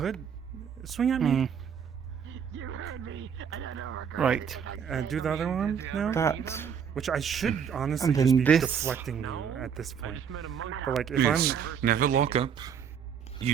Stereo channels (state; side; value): quieter; left; 7.5 dB